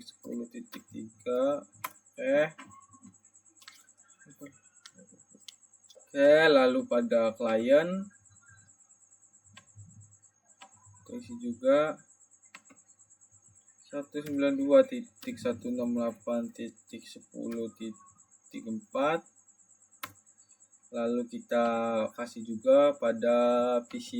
Oke, lalu pada klien isi juga 192.168.10.4. Lalu kita kasih juga pada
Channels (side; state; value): both; identical; correlation 1.00